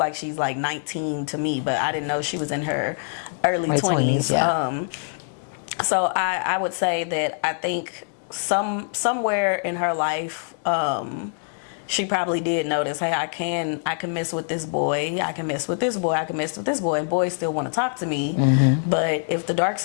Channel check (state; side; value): silent; right; 62 dB below the other